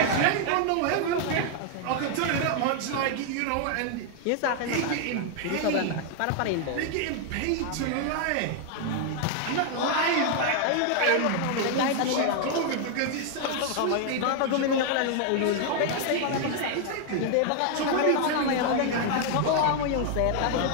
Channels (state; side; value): different; both; correlation 0.00